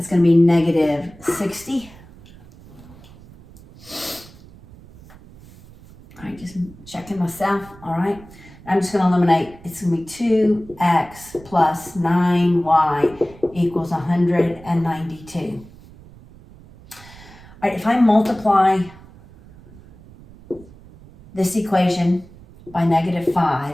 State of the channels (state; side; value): noise; right; rumble, 22 dB below the sound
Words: gonna be negative 60. All right, just checking myself, all right? I'm just gonna eliminate, it's gonna be 2x plus 9y equals 192. All right, if I multiply this equation by negative